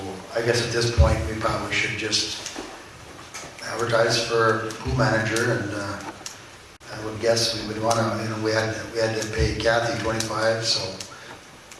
I guess at this point, we probably should just advertise for pool manager, and I would guess we would want to, you know, we had to pay Kathy 25, so,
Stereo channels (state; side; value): identical; both; correlation 1.00